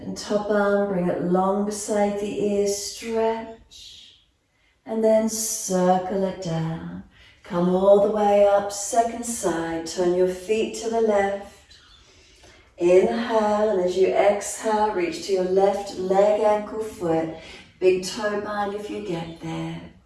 top arm, bring it long beside the ears, stretch. And then circle it down. Come all the way up, second side, turn your feet to the left. Inhale, and as you exhale, reach to your left leg, ankle, foot. Big toe bind if you get there.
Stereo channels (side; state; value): both; identical; correlation 1.00